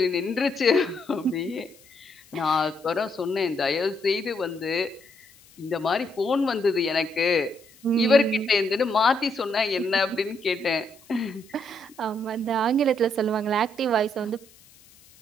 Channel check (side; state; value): left; noise; hiss, 26 dB below the sound